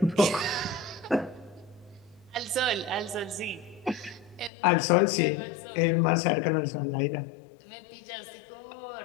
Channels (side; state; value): right; drops out; at 4.5 s